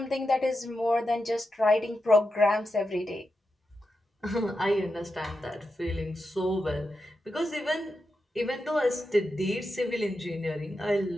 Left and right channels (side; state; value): both; normal; correlation 0.88